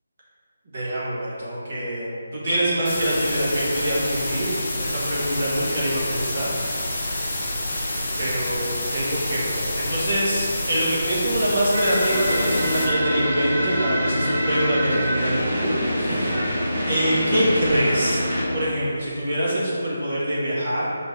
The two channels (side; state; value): both; inverted; correlation -0.85